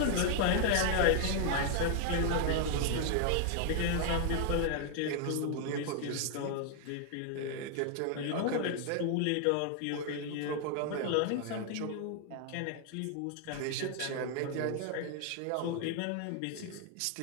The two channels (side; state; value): both; different; correlation 0.00